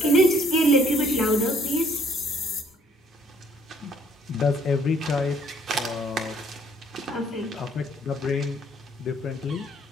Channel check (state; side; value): normal; both; correlation 0.63